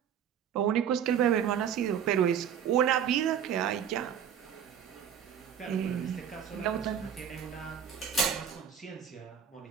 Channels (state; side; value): quieter; left; 8.6 dB